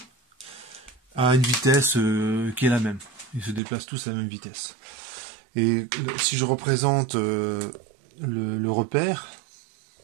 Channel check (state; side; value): drops out; left; at 3.6 s